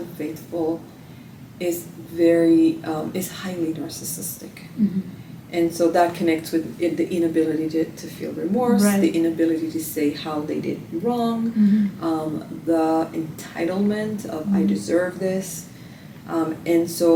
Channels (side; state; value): both; identical; correlation 1.00